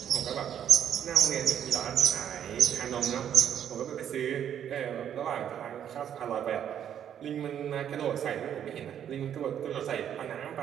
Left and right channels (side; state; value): left; quieter; 9.5 dB